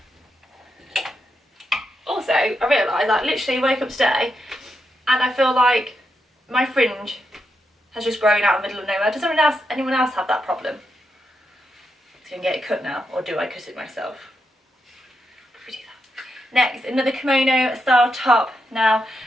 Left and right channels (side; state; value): both; normal; correlation 0.83